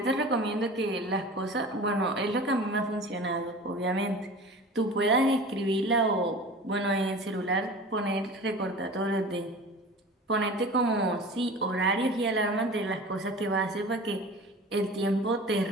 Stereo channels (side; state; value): both; normal; correlation 0.37